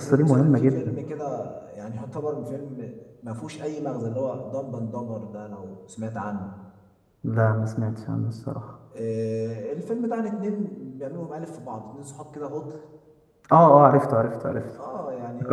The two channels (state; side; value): identical; both; correlation 1.00